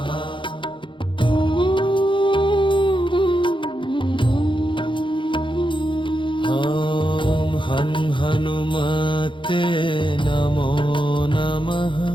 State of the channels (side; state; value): right; late; 0.24 ms